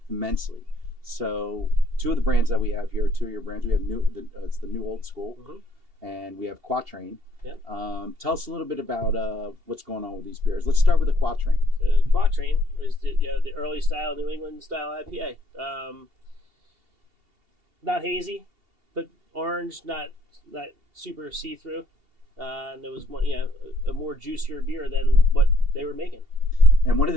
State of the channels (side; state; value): left; late; 2.8 ms